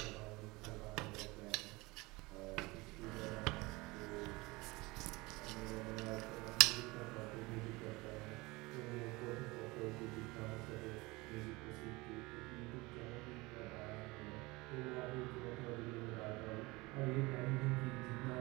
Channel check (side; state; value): left; quieter; 23.0 dB